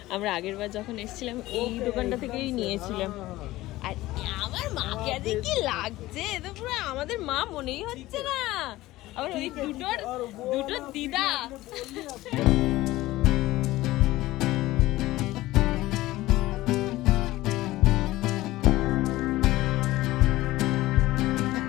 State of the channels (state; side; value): quieter; right; 17.4 dB